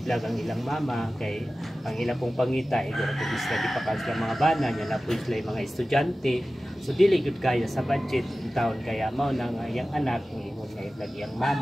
ang ilang mama kay ang ilang pong pangita iguro po sila gipakan sila mga bana nya na po sila mga estudyante so dili gud kaya sa budget in taon kaya mao nang iyang anak ingon nga i-vlog iyang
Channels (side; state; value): both; normal; correlation 0.96